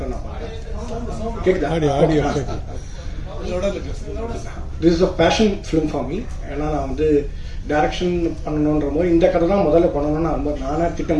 நான் பார்க்குறேன். கேட்குதா? This is a passion film for me. ஏன்னா நான் வந்து டைரக்ஷன் பண்ணணுன்ற போது இந்த கதை தான் முதல்ல பண்ணணும்னு ரொம்ப நானே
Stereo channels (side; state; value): both; identical; correlation 1.00